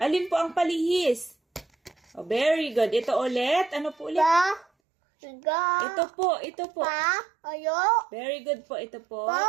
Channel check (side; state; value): left; drops out; at 4.7 s